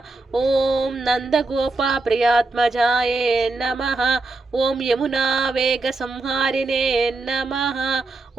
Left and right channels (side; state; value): left; quieter; 3.3 dB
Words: ओम नंदगोपा प्रियात्मजाय नमः। ओम यमुना वेग संहारिणे नमः।